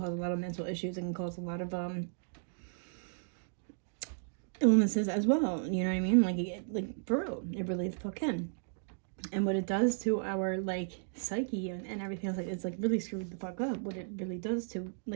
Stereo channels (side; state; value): left; silent; digital silence